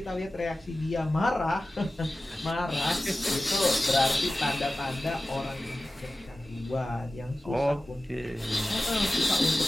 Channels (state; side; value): normal; both; correlation 0.95